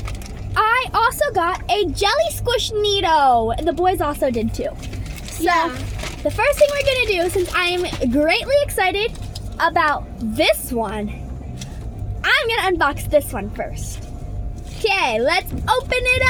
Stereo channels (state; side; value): identical; both; correlation 1.00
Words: I also got a jelly squish Neato. The boys also did too. So the first thing we're gonna do, since I am greatly excited about this one, I'm gonna unbox this one first. Okay, let's open it